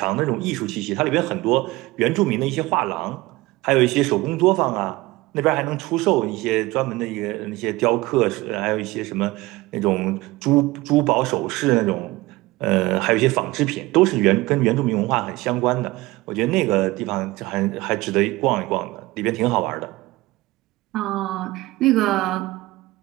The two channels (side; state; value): left; quieter; 20.0 dB